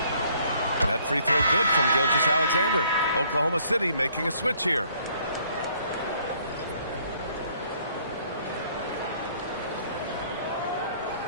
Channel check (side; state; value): both; inverted; correlation -0.63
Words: That free throw good from Gilgeous-Alexander. Oklahoma City making a switch here.